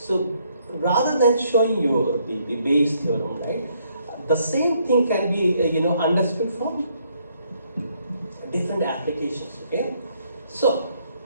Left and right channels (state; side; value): inverted; both; correlation -0.70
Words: rather than showing you the Bayes theorem, right, the same thing can be understood from different applications. Okay, so